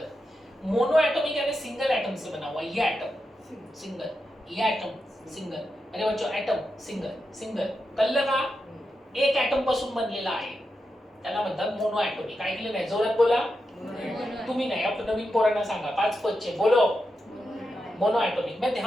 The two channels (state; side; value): normal; both; correlation 0.87